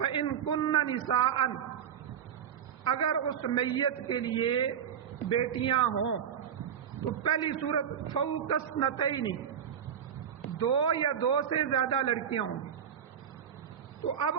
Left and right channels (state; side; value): quieter; left; 8.5 dB